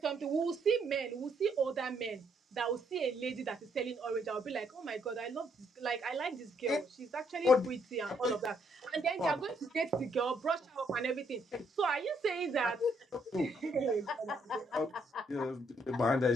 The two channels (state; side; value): normal; both; correlation 0.71